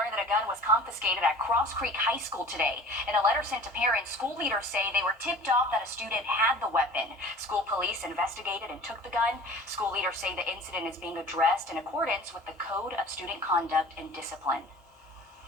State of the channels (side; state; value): both; normal; correlation 0.43